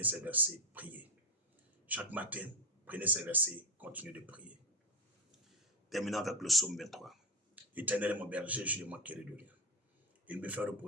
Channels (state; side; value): normal; both; correlation 0.14